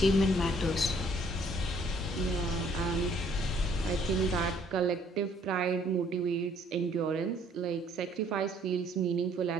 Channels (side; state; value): both; normal; correlation 0.62